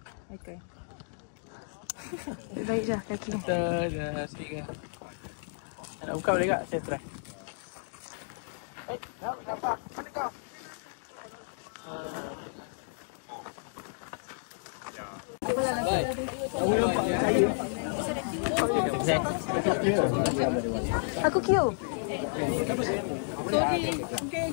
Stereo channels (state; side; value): silent; right; digital silence